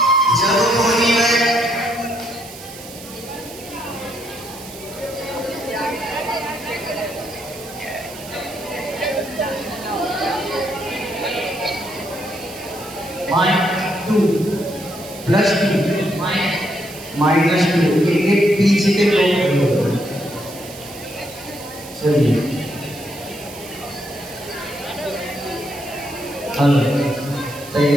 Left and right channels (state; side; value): noise; right; hiss, 15 dB below the sound